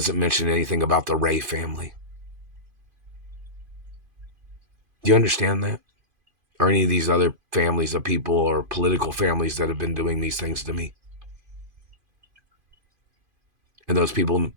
mention anything about the Ray family. Do you understand that? Or any of these other families of people or political families that have been doing these things to me? And those people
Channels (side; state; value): left; late; 2.5 ms